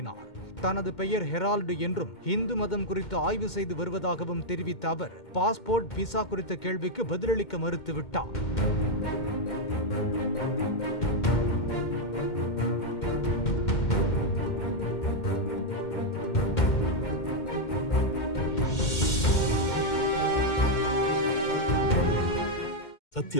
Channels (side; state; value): right; late; 2.1 ms